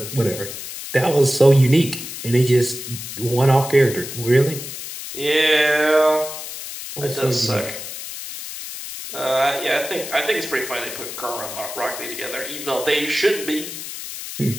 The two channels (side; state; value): left; noise; hiss, 9 dB below the sound